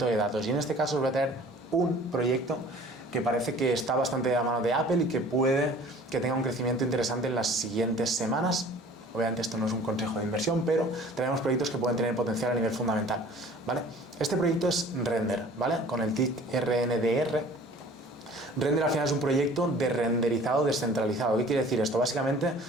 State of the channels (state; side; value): normal; both; correlation 0.48